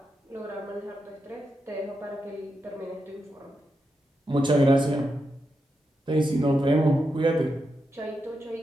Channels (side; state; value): both; normal; correlation 0.86